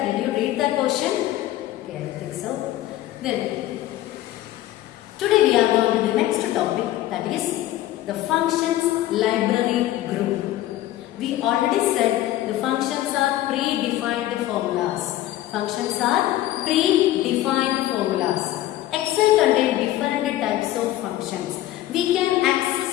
Did you read that question? Okay, I think so. Then today we are going to the next topic, that is the functions library group. We already said the functions are predefined formulas. Functions are predefined formulas. Excel contains different types of functions. We can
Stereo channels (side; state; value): right; quieter; 14.6 dB